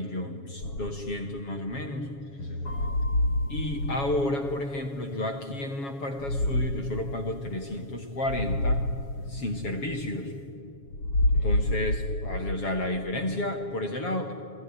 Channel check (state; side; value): late; right; 7.2 ms